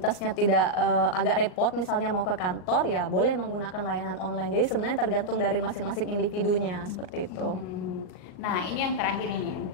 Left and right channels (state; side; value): late; right; 38 ms